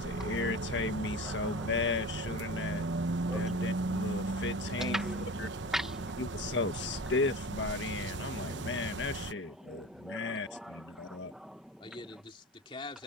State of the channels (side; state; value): both; normal; correlation 0.34